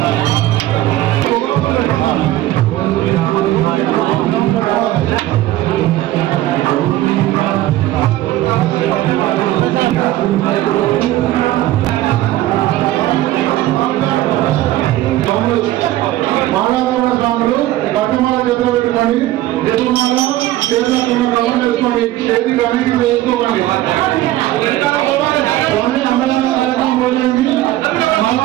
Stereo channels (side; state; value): left; quieter; 15.2 dB